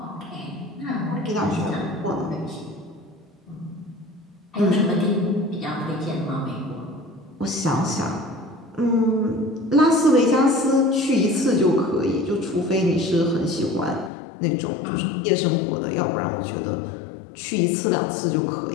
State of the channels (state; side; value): drops out; right; at 14.1 s